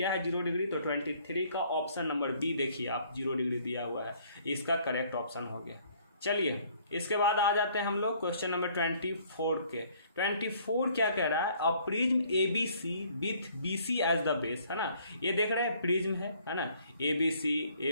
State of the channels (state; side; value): inverted; both; correlation -0.60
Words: है 0 डिग्री तो 23 का ऑप्शन नंबर बी देखिए आप 0 डिग्री दिया हुआ है, इसका करेक्ट ऑप्शन हो गया। चलिए इसके बाद आ जाते हैं हम लोग क्वेश्चन नंबर 24 के। 24 क्या कह रहा है, a prism ABC with BC as the base, है ना, ये देख रहे हैं प्रिज्म है ना, ABC